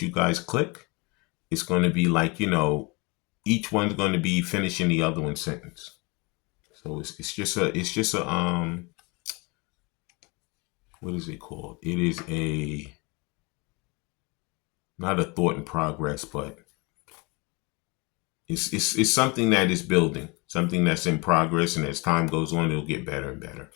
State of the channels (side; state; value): right; quieter; 27.8 dB